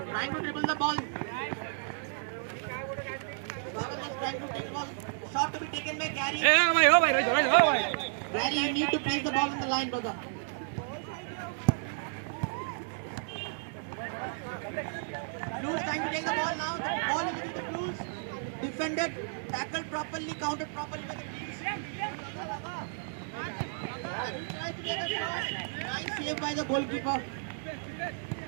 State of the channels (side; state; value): left; silent; digital silence